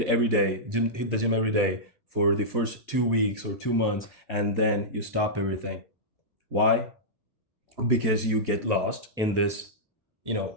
the gym every day for the first 2 weeks or 2 months, and then you stop everything. Why? Because you get lost in this,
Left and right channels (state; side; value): normal; both; correlation -0.12